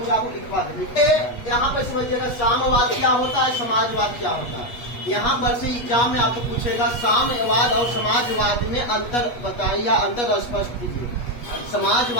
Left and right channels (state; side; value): late; right; 8.3 ms